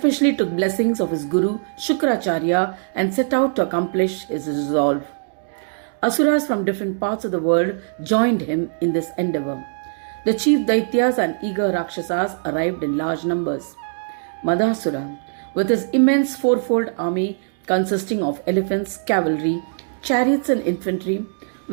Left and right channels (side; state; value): left; silent; digital silence